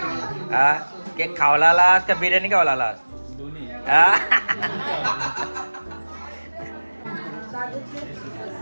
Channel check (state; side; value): inverted; both; correlation -1.00